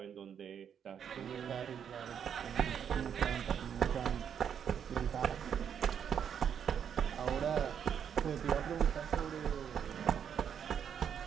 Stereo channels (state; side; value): quieter; left; 8.2 dB